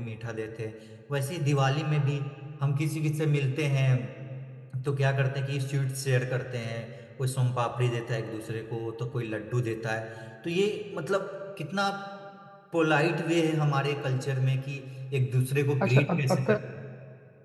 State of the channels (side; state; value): both; identical; correlation 1.00